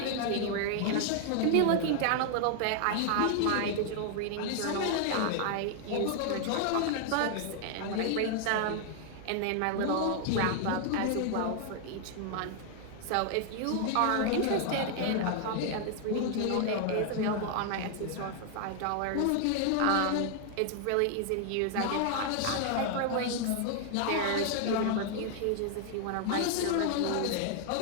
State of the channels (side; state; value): both; different; correlation 0.00